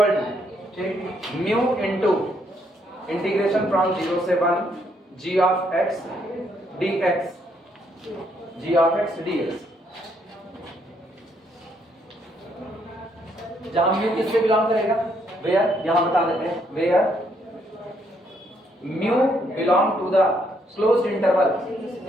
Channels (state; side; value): normal; both; correlation 0.72